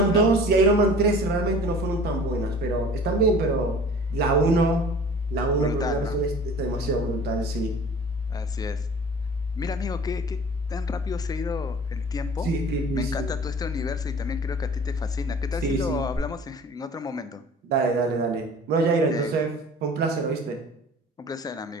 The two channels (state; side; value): normal; both; correlation 0.45